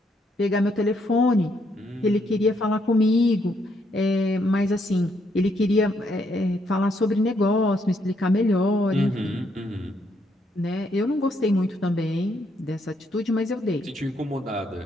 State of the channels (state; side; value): normal; both; correlation 0.74